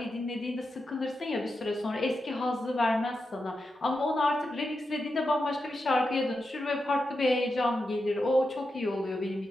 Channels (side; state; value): both; normal; correlation 0.88